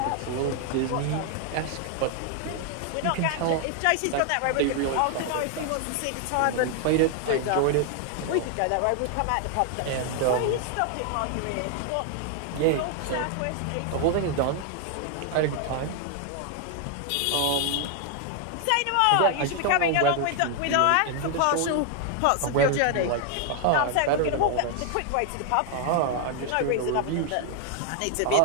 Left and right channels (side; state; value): both; different; correlation 0.00